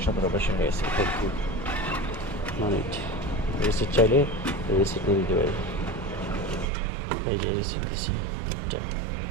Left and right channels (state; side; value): drops out; left; at 6.7 s